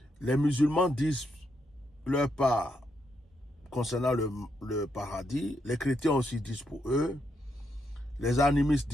Les musulmans disent leur part concernant le paradis. Les chrétiens aussi disent pour eux. Les animistes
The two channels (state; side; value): normal; both; correlation 0.80